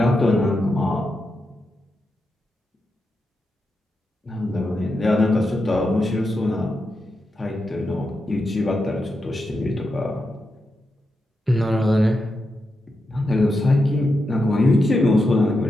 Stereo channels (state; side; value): normal; both; correlation 0.87